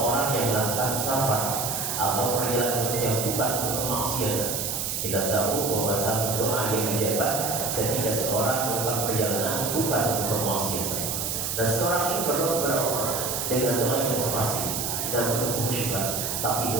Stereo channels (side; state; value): right; noise; hiss, 2 dB below the sound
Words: yang melakukan safar atau perjalanan yang bukan untuk kemaksiatan. Kita tahu bahwa salah satu doa yang dijawab ketika seorang melakukan perjalanan bukan untuk kemaksiatan. Dan seorang ini berdoa kepada Allah dengan doa yang pasti dan penuh khusyuk, tapi